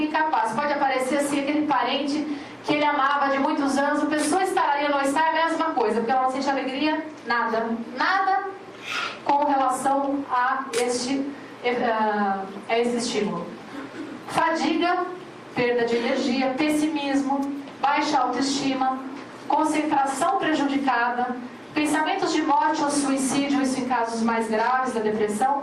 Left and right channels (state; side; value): identical; both; correlation 1.00